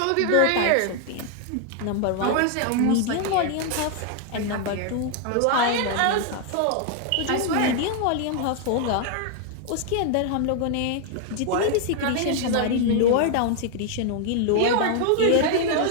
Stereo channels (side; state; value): both; different; correlation 0.00